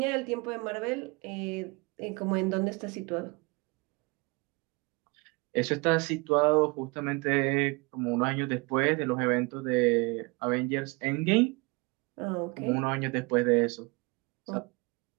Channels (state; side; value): quieter; left; 27.6 dB